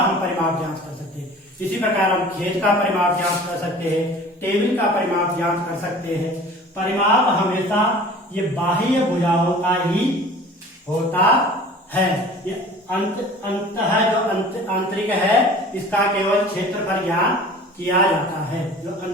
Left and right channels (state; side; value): normal; both; correlation 0.44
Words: परिमाप ज्ञात कर सकते हैं। इसी प्रकार हम खेत का परिमाप ज्ञात कर सकते हैं, टेबल का परिमाप ज्ञात कर सकते हैं। परिमाप हमेशा ये बाह्य भुजाओं का ही होता है। ये अंत है जो आंतरिक है, इसका केवल क्षेत्रफल ज्ञात किया जाता है जो